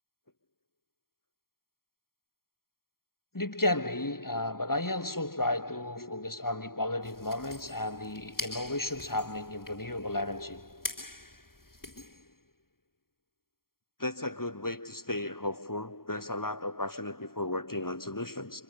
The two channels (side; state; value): right; late; 0.93 ms